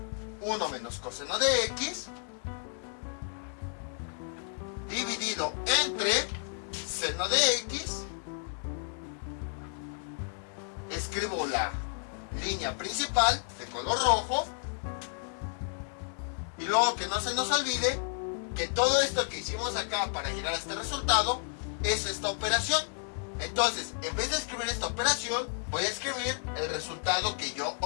1 menos coseno de x dividido entre seno de x. Escribo la línea principal de color rojo. Y luego que no se nos olvide que todo esto que hicimos acá para llegar a este resultado es esta operación. Entonces, en vez de escribir esta operación, voy a escribir el resultado que yo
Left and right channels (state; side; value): silent; right; 57 dB below the other